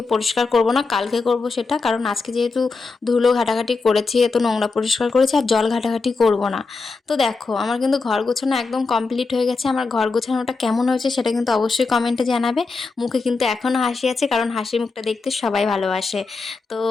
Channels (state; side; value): quieter; right; 4.1 dB